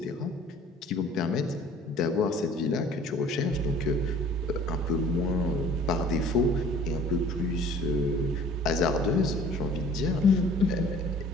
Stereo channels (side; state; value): both; normal; correlation 0.50